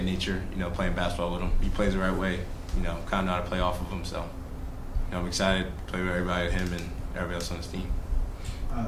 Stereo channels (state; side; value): identical; both; correlation 1.00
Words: nature, you know, playing basketball with him. He plays the right way, you know, kind of know how to play off of him. So, you know, I'm excited to play with everybody, him and everybody else on his team.